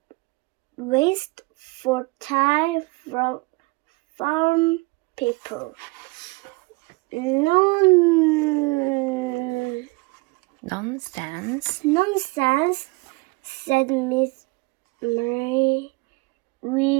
waste for time from farm people. Nonsense, said Miss Mary.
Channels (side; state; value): left; quieter; 26.3 dB